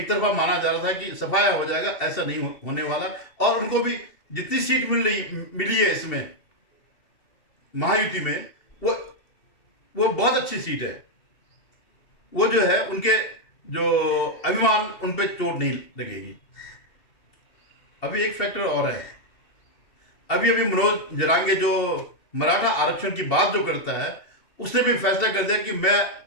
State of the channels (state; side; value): late; right; 2.7 ms